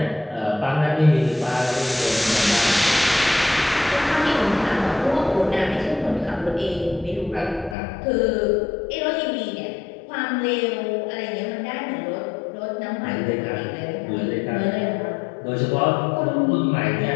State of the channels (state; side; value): drops out; right; at 7.8 s